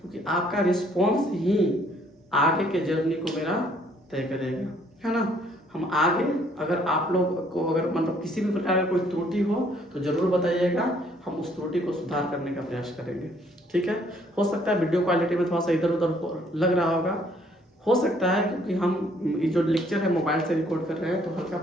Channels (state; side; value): normal; both; correlation 0.64